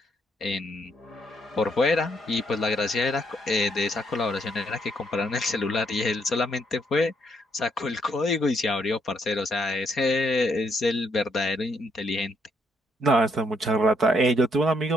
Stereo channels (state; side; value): normal; both; correlation 0.73